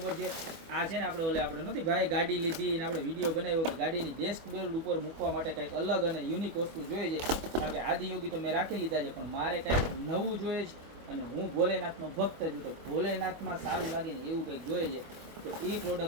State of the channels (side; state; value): left; late; 25 ms